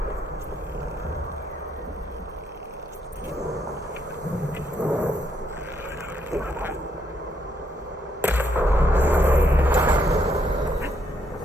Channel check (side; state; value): both; normal; correlation 0.75